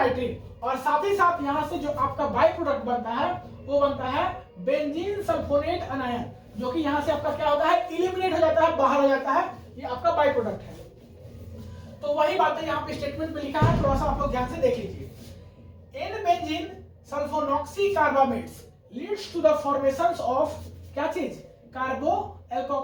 और साथ ही साथ यहां से जो आपका बाई प्रोडक्ट बनता है वो बनता है बेंजीन सल्फोनेट अनायन, जो कि यहां से आपका क्या होता है, इलिमिनेट हो जाता है, बाहर हो जाता है। ये आपका बाई प्रोडक्ट है। तो वही बात है यहाँ पे स्टेटमेंट में लिखा है, थोड़ा सा आप लोग ध्यान से देख लीजिए। N benzene sulfonoxy carbamates leads to the formation of क्या चीज, carbo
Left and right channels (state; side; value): identical; both; correlation 1.00